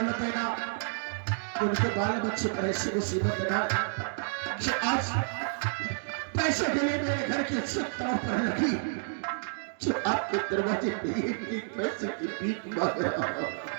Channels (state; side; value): silent; left; digital silence